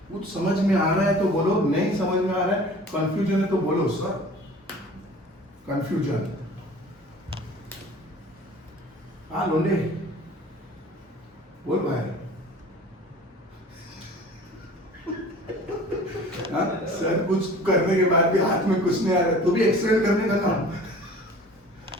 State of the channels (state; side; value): normal; both; correlation 0.45